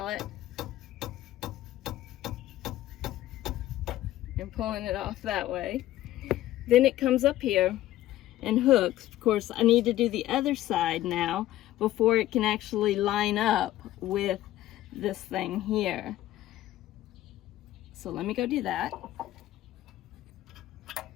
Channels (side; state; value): right; quieter; 14.4 dB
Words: and pulling it off that way. Then it comes up here and hooks. Of course, I need to do the other side now before it can actually line up with this thing here. So let me go do that.